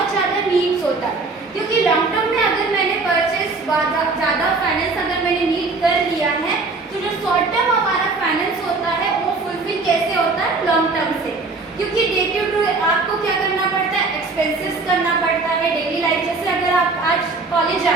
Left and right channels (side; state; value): left; quieter; 3.8 dB